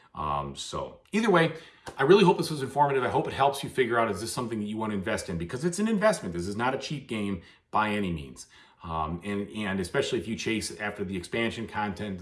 So either way, I really hope this was informative. I hope it helps you figure out, is this something that you want to invest in? Because it's an investment. This is not a cheap game by any means. And especially if you chase after the expansion content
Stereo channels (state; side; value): identical; both; correlation 1.00